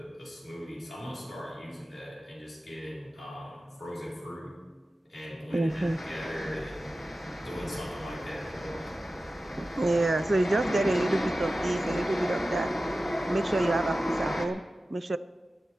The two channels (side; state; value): both; normal; correlation 0.95